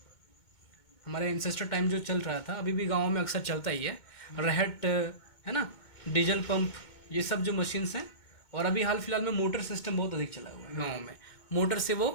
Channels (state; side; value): late; right; 2.2 ms